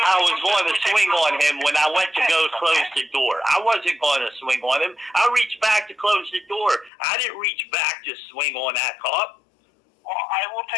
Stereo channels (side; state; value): right; drops out; at 6.9 s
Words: was going to swing on him when I went to go close the door. I wasn't going to swing on him. I reached back to close the door. I didn't reach back to swing on that cop. Well, I will